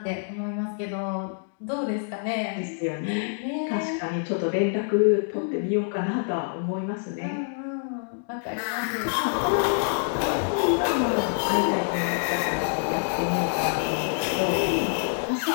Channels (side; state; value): right; silent; digital silence